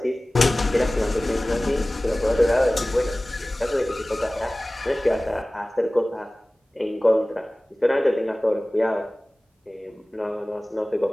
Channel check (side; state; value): both; normal; correlation 0.98